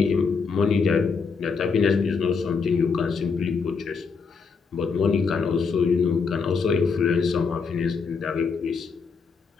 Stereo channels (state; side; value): quieter; right; 5.3 dB